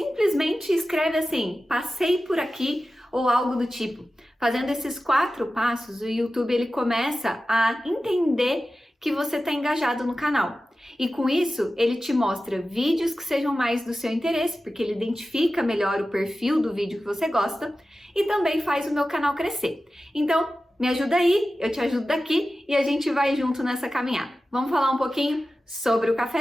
escreve assim, passei por aqui, ou algo do tipo. Fazendo esses 4 passos, o YouTube ele começa a entender que você está engajado no canal. E com isso, ele te mostra vídeos que sejam mais do seu interesse, porque ele identifica melhor o perfil do vídeo que você gosta e também faz o meu canal crescer. Então, me ajuda aí, eu te ajudo daqui e a gente vai junto nessa caminhada. Vamos falar um pouquinho sobre o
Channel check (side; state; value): both; normal; correlation 0.94